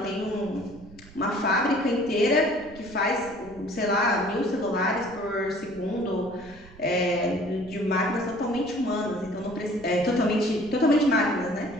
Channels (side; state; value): right; noise; rumble, 21 dB below the sound